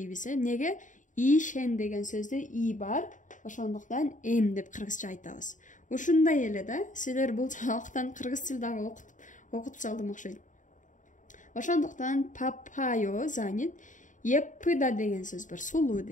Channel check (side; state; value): right; late; 0.37 ms